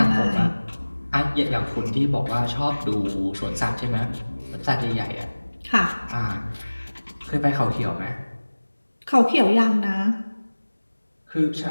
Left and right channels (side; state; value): both; inverted; correlation -1.00